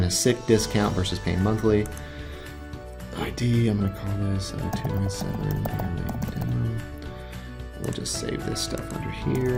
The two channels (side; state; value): both; identical; correlation 1.00